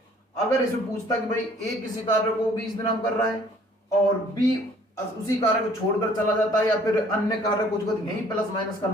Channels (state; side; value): normal; both; correlation 0.57